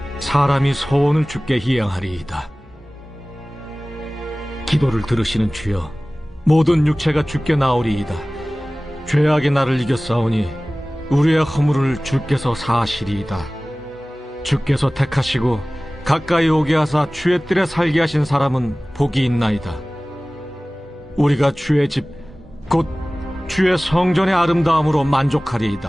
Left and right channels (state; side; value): normal; both; correlation 0.98